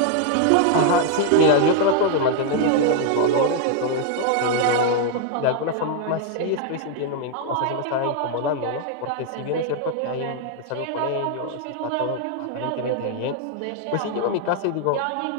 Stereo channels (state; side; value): different; both; correlation 0.00